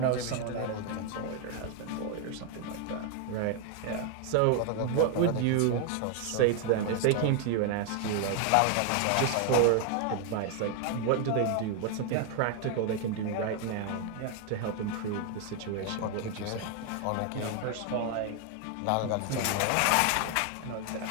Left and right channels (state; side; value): different; both; correlation 0.01